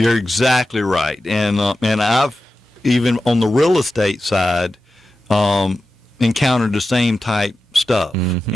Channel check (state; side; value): normal; both; correlation 0.93